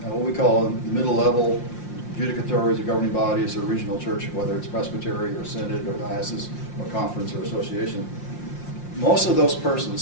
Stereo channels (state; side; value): late; right; 5.7 ms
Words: what we call middle level judicatories or governing bodies or regional church, whether it's presbytery or synod or diocese or conference or association, most of those